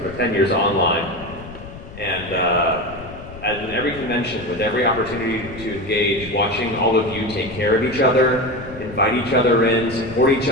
but 10 years online. And at every convention, with every opportunity to engage, watching all of you take care of each other, invite each other in, support each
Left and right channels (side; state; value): left; noise; rumble, 15 dB below the sound